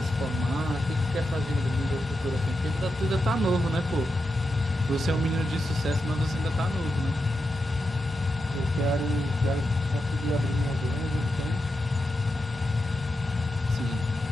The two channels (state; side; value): normal; both; correlation 0.87